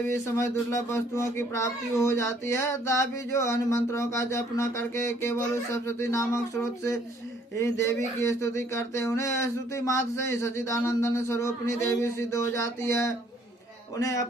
भी समय दुर्लभ वस्तुओं की प्राप्ति हो जाती है। तथापि जो अन्य मंत्रों का जप न करके केवल उस सप्तशती नामक स्रोत से ही देवी की स्तुति करते हैं, उन्हें स्तुति मात्र से ही सच्चिदानंदन स्वरूपिणी देवी सिद्ध हो जाती है। उन्हें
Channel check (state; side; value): normal; both; correlation 0.63